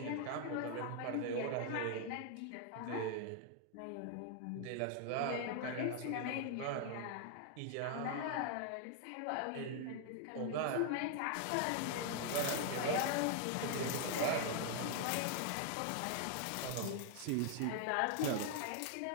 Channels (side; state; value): both; different; correlation 0.00